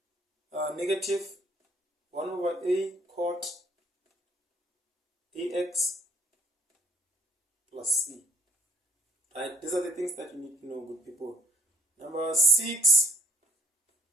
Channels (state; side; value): normal; both; correlation 0.59